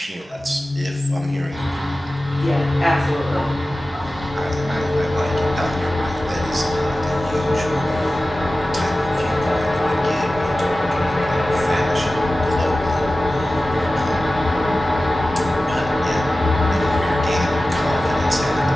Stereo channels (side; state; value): both; normal; correlation 0.96